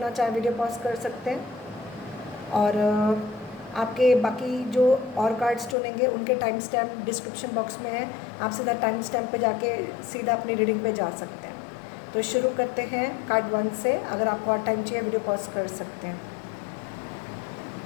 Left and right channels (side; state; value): right; drops out; at 5.8 s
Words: चाहे वीडियो पॉज कर सकते हैं। और आपके बाकी जो और कार्ड्स चुनेंगे उनके टाइम स्टैम्प डिस्क्रिप्शन बॉक्स में है, आप सीधा टाइम स्टैम्प पे जाके सीधा अपनी रीडिंग पे जा सकते हैं। तो शुरू करते हैं कार्ड 1 से। अगर आपको और टाइम चाहिए वीडियो पॉज कर सकते हैं।